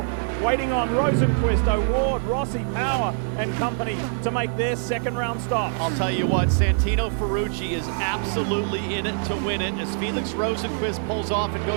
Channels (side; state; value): left; silent; 62 dB below the other